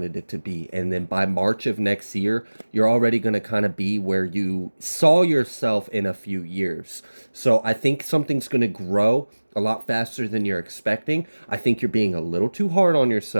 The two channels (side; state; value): both; inverted; correlation -1.00